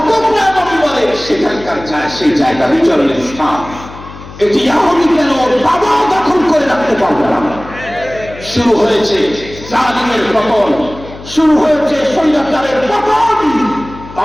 পুরাতন বলে সেখানকার সেই জায়গা বিচরণের স্থান। এটি ইহুদি কেন বাবা দখল করে রাখতে পারবে না? শুরু হয়েছে জালিমের পতন, শুরু হয়েছে স্বৈরাচারের পতন।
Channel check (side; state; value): left; noise; hum, 16 dB below the sound